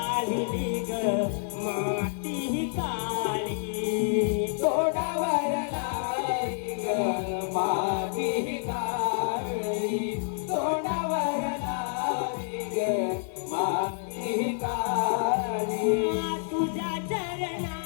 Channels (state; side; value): silent; right; 59 dB below the other